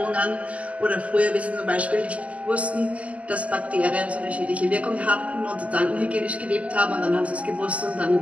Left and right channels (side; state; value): left; late; 0.066 ms